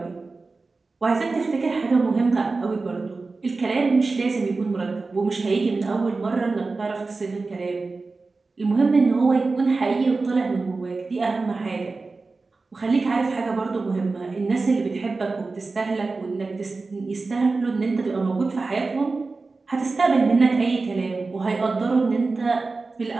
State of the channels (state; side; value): quieter; left; 3.8 dB